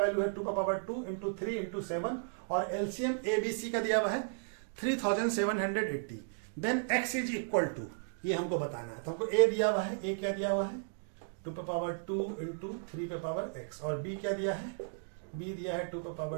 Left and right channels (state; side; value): silent; left; digital silence